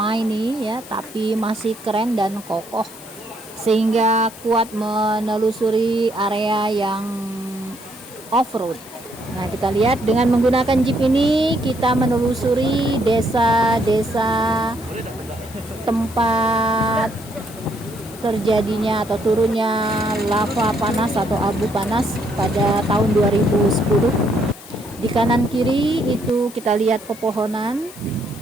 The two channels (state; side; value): noise; left; hiss, 19 dB below the sound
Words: ini ya, tapi masih keren dan kokoh sehingga kuat menelusuri area yang off-road. Nah, kita lihat dengan menggunakan Jeep ini kita menelusuri desa-desa tempat terjadinya atau turunnya lava panas atau abu panas pada tahun 2010. Di kanan kiri itu kita lihat pepohonan